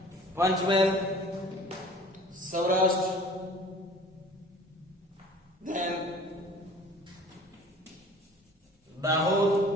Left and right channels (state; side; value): normal; both; correlation 0.47